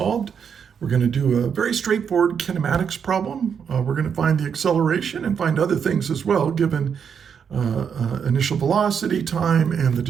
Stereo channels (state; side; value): quieter; left; 7.2 dB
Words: We're going to do a very straightforward kinematics problem. We're going to find the acceleration and find other things as well, given initial velocity, time, and the